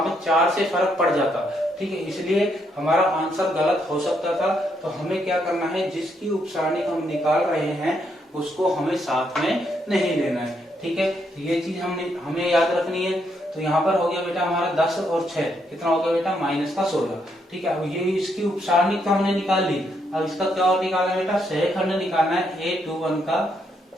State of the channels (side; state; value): both; normal; correlation 0.76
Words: पर 4 से फर्क पड़ जाता, ठीक है, इसलिए हमारा आंसर गलत हो सकता था। तो हमें क्या करना है, जिसकी उपसारणिक हम निकाल रहे हैं उसको हमें साथ में नहीं लेना है, ठीक है, ये चीज हमें याद रखनी है। तो यहाँ पर हो गया बेटा हमारा 10 और 6 कितना हो गया बेटा -16, ठीक है। अब ये इसकी उपसारणिक तो हमने निकाल ली, अब इसका क्या और निकालना है बेटा, सहखंड निकालना है, A21 का